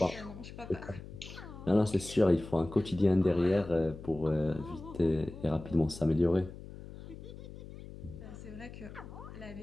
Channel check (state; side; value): noise; left; hum, 14 dB below the sound